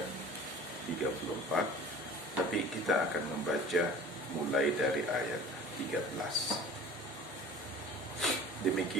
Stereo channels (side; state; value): both; normal; correlation 0.43